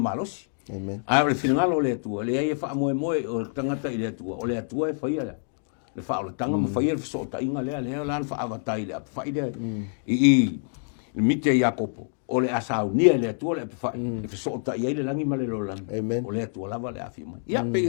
a ole finanga le tu le ia fa mo o tangata ile tu ole atua e fai le fa o tanga mo fai el so ta inga le lan fa avatai le fai de i mite Jakopo ole asaunia le tua le fa e so ta ia le langi male lo lang ole tua lava le afi mai ia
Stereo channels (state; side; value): silent; right; digital silence